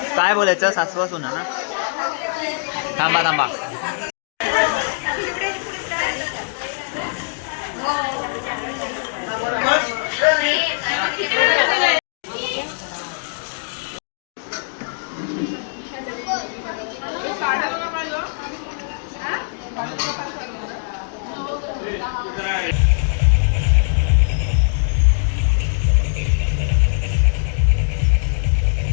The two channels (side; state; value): right; silent; digital silence